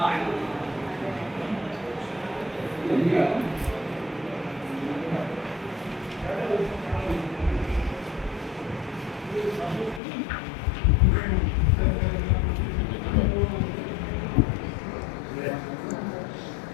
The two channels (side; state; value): right; drops out; at 10.0 s